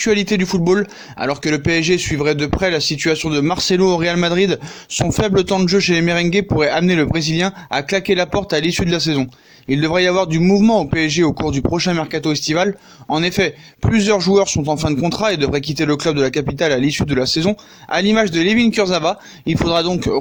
du football. Alors que le PSG suivrait de près la situation de Marcelo au Real Madrid, son faible temps de jeu chez les merengues pourrait amener le Brésilien à claquer la porte à l'issue de la saison. Il devrait y avoir du mouvement au PSG au cours du prochain mercato estival. En effet, plusieurs joueurs sont en fin de contrat et devraient quitter le club de la capitale à l'issue de la saison. À l'image de Layvin Kurzawa, il faudra donc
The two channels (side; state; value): both; identical; correlation 1.00